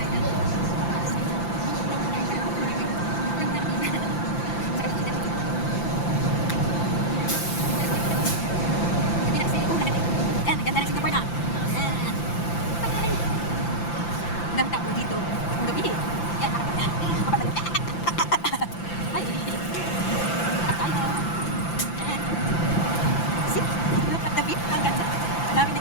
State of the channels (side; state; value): right; late; 5.9 ms